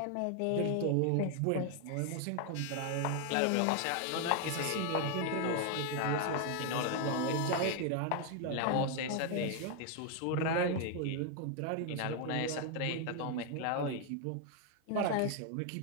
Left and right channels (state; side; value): different; both; correlation 0.00